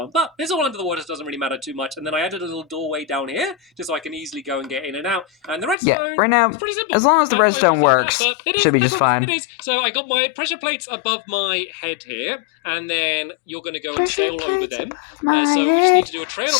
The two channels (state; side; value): drops out; right; at 5.8 s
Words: but it's all under the water, so it doesn't really matter too much. And then I added a little doorway down here, just so I can easily go and get in and out. And the redstone, right now, is pretty simple. as long as the redstone works, should be just fine. It is. So I got my pressure plates above my head here, and then you're going to go and sail over them. So we just need to do a trail